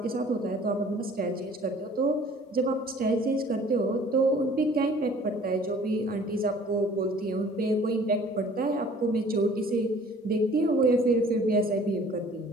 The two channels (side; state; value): both; normal; correlation 0.51